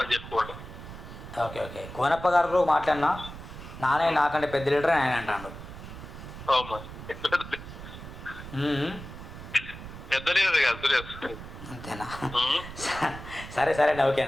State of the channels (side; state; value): right; noise; rumble, 12 dB below the sound